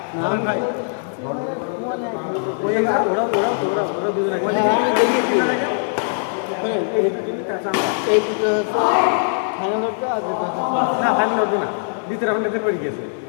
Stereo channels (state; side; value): silent; right; 65 dB below the other